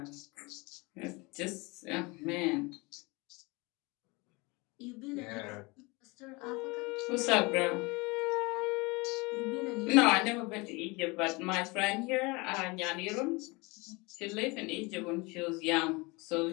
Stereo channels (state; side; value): quieter; right; 25.9 dB